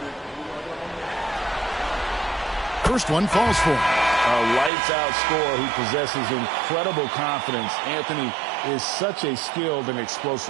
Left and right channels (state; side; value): drops out; left; at 4.7 s